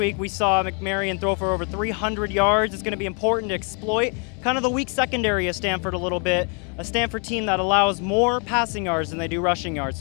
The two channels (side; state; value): right; quieter; 37.9 dB